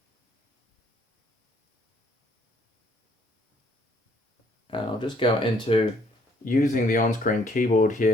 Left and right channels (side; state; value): both; normal; correlation 0.65